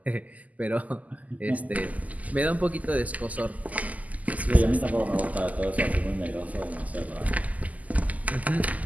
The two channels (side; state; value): left; late; 0.076 ms